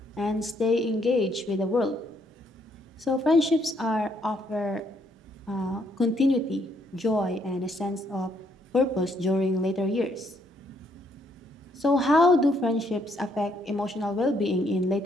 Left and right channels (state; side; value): normal; both; correlation 0.71